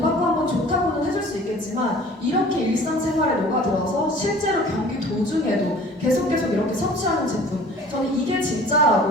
받고 한번 좋다고는 해줄 수 있겠지만, 이렇게 일상생활에 녹아들어서 실제로 경기 도중에도 계속 이렇게 섭취하는 제품, 저는 이게 진짜라고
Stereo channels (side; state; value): both; normal; correlation 0.48